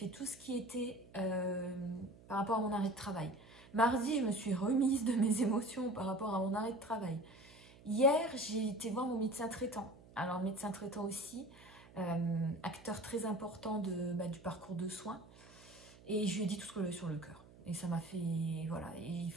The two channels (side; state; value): right; noise; hum, 22 dB below the sound